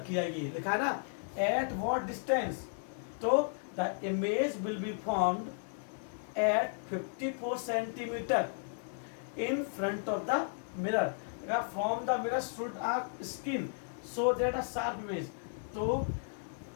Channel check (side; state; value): right; silent; 55 dB below the other